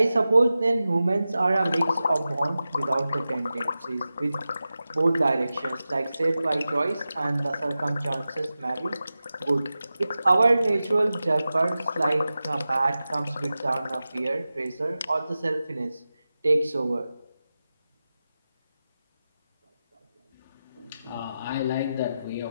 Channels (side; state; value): both; inverted; correlation -0.94